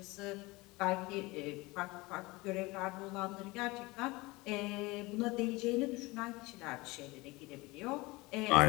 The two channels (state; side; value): quieter; right; 22.6 dB